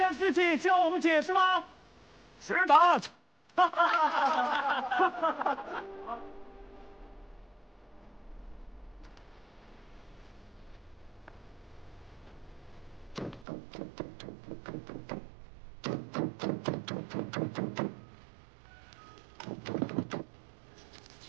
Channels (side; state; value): left; drops out; at 13.5 s